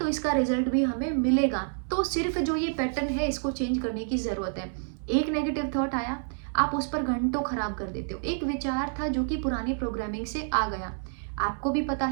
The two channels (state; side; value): silent; left; 59 dB below the other